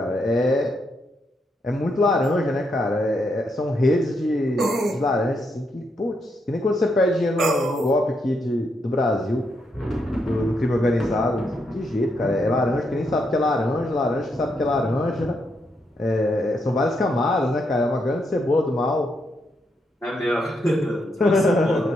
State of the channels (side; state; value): both; normal; correlation 0.79